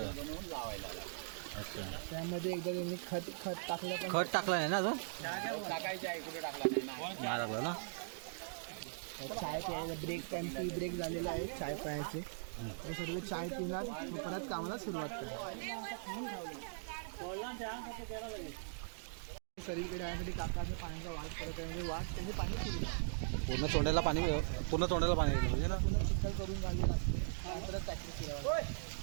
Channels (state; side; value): silent; left; digital silence